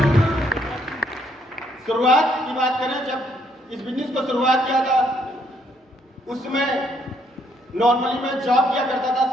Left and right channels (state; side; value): normal; both; correlation 0.70